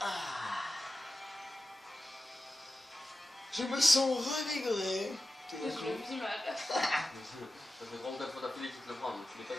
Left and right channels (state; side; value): normal; both; correlation 0.93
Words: Je me sens revigoré. Je le vis mal. Ça fait 34 fois d'affilée que tu te le prends, donc tu l'as pas